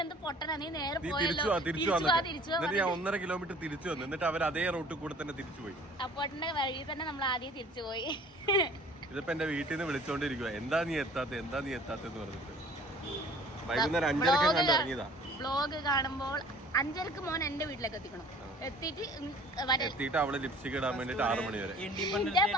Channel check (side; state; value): both; normal; correlation 0.50